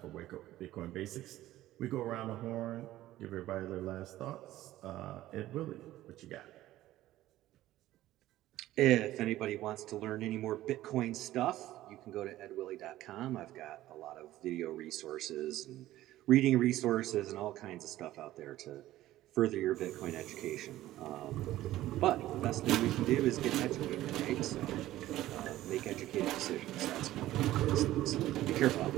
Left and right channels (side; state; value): left; quieter; 15.0 dB